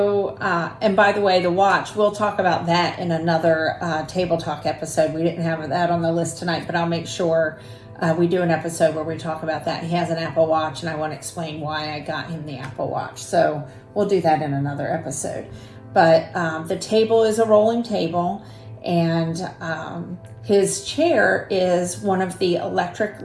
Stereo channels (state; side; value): identical; both; correlation 1.00